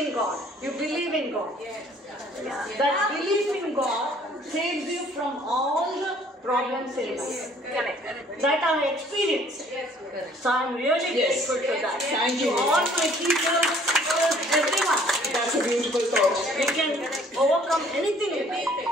in God. You believe in God. That belief in God saves you from all the problems in life. That I experienced. So I'm really grateful to that. Thank you. To all my teachers, everyone. That's a beautiful thought. We can overcome anything in life.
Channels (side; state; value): both; normal; correlation 0.58